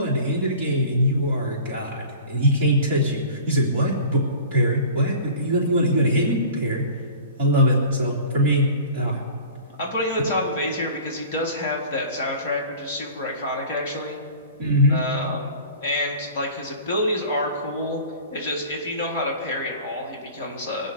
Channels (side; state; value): both; inverted; correlation -0.42